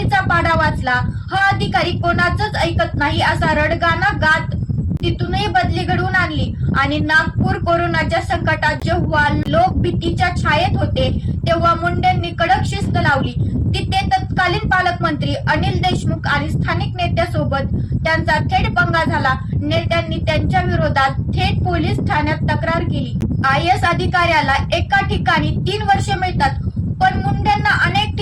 पाढा वाचला. हा अधिकारी कोणाचंच ऐकत नाही असा रडगाणा गात तिथूनही बदली घडवून आणली. आणि नागपूर कोरोनाच्या संकटात जेव्हा लोक भीतीच्या छायेत होते तेव्हा मुंडेंनी कडक शिस्त लावली. तिथे तत्कालीन पालकमंत्री अनिल देशमुख आणि स्थानिक नेत्यासोबत त्यांचा थेट पंगा झाला. नेत्यांनी त्यांच्या विरोधात थेट पोलीस ठाण्यात तक्रार केली. IAS अधिकाऱ्याला एका ठिकाणी 3 वर्षे मिळतात, पण मुंडेंना अनेक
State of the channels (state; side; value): identical; both; correlation 1.00